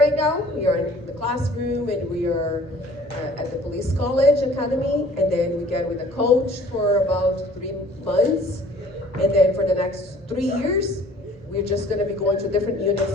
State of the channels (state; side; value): normal; both; correlation 0.52